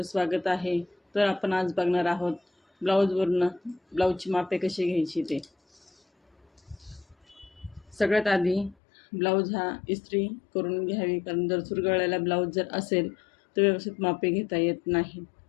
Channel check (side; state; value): right; drops out; at 8.8 s